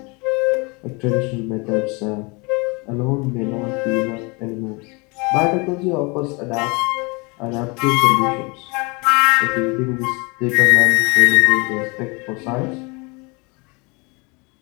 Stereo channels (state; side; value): quieter; right; 28.8 dB